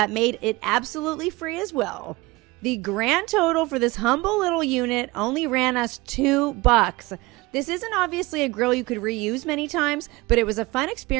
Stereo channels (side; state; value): left; quieter; 22.1 dB